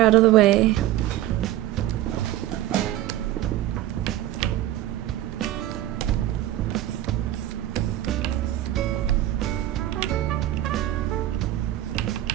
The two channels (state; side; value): quieter; left; 13.8 dB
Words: of the way.